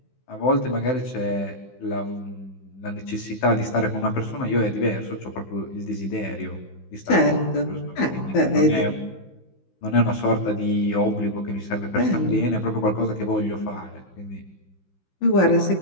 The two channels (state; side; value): late; right; 16 ms